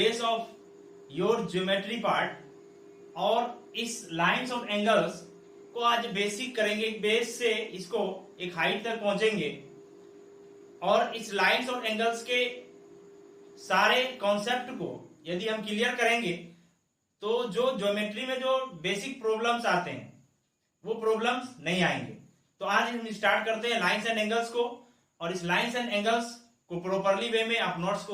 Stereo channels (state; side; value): identical; both; correlation 1.00